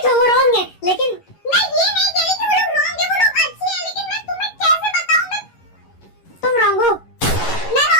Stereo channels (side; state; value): right; late; 11 ms